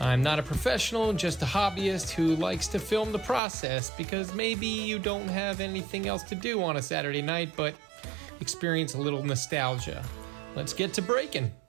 not a professional, just a hobbyist who likes to film the process because maybe you don't have anything else to do on a Saturday night, but experience a little nostalgia. Let's get to breaking.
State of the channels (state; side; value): drops out; left; at 3.4 s